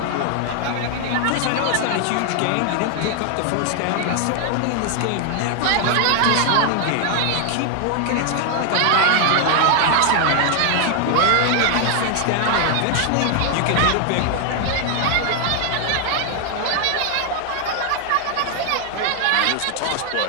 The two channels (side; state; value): both; different; correlation 0.00